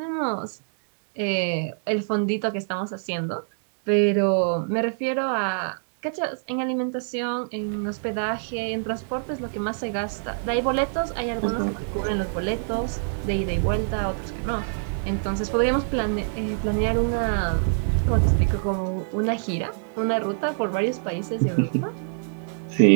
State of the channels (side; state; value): left; silent; digital silence